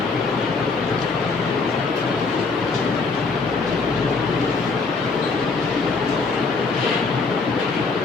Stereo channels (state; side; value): quieter; right; 4.3 dB